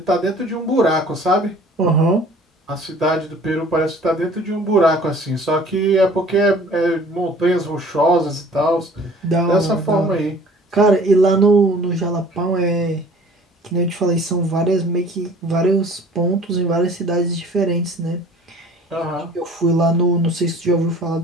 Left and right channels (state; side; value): normal; both; correlation 0.50